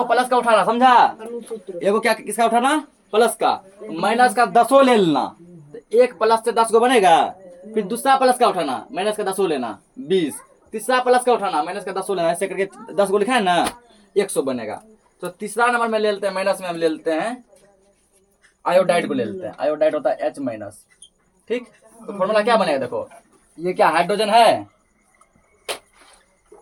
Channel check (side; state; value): both; identical; correlation 1.00